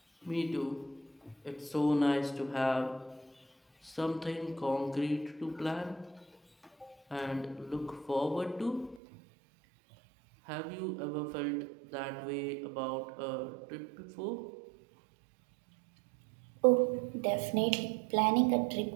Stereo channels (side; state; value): left; drops out; at 9.0 s